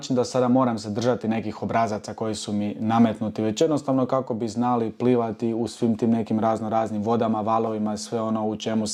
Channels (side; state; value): both; identical; correlation 1.00